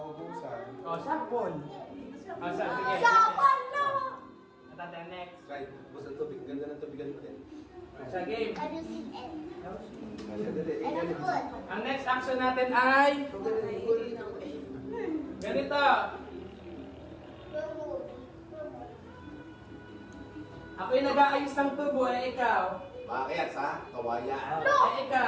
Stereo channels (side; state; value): both; identical; correlation 1.00